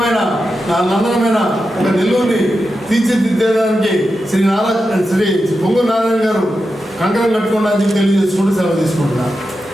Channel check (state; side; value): normal; both; correlation 0.89